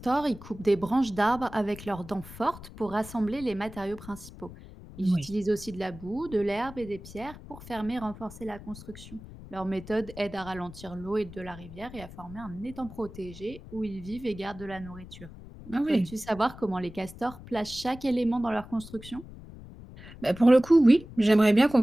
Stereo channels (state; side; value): noise; left; rumble, 16 dB below the sound